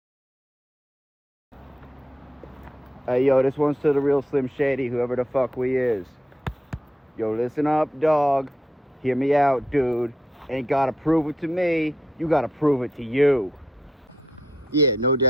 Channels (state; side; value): normal; both; correlation 0.80